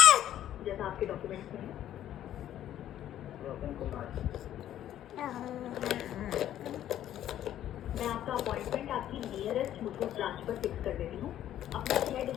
जैसा आपके डॉक्यूमेंट्स में है। रोशन कुमार। मैं आपका अपॉइंटमेंट आपकी नियरेस्ट मुथूट ब्रांच पर फिक्स कर देती हूँ। अपना 6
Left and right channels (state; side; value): quieter; right; 11.8 dB